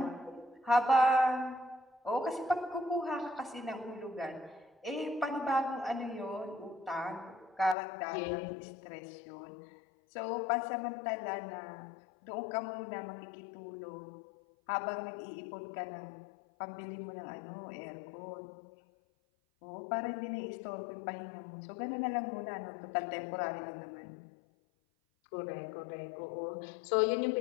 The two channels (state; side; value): drops out; right; at 7.8 s